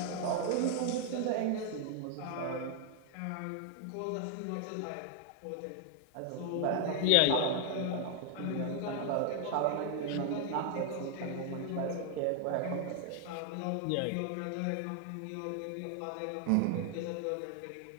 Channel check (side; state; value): both; different; correlation 0.00